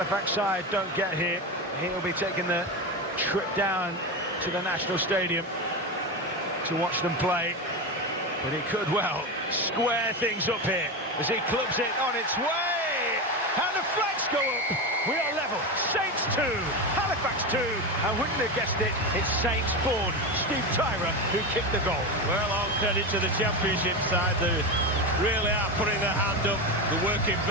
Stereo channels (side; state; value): both; normal; correlation 0.18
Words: side don't get here, he'll be taking the trip down to the National Stadium to watch them play. But he could well square things up here as he clubs it on its way. And the flags go up. We are level. Saints 2, Halifax 2, and wouldn't have guessed it, it's Saints born Steve Tyra who kicked the goal. Well, all credit to the Championship side. They really are putting their hand up. They're working